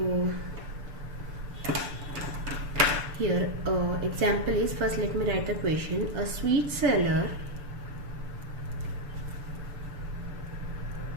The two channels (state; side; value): late; left; 6.9 ms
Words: here example is, first let me write the question. A sweet seller